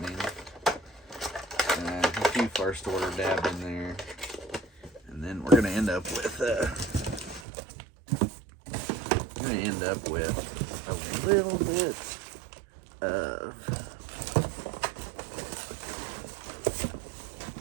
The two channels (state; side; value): drops out; left; at 7.5 s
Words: A few first order dabbed in there, and then we're gonna end up with a little bit